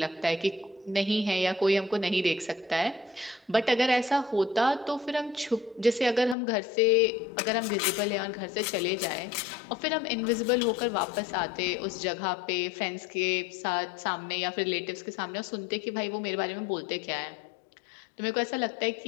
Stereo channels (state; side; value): drops out; right; at 6.4 s